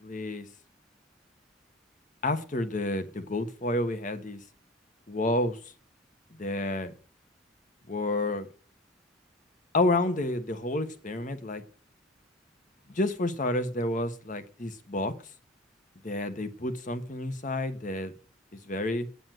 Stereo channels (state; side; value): normal; both; correlation 0.32